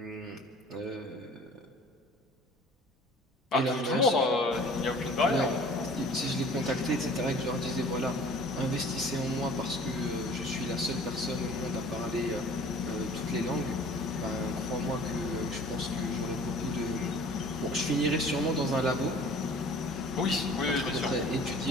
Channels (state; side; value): normal; both; correlation 0.48